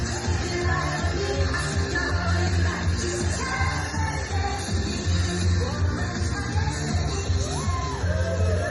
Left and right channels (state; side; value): identical; both; correlation 1.00